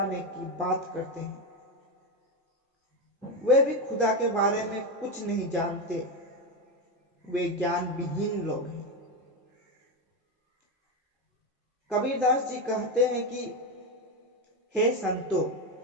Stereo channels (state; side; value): normal; both; correlation 0.12